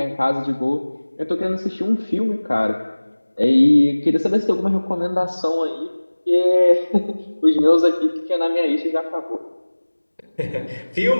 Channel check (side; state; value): both; inverted; correlation -1.00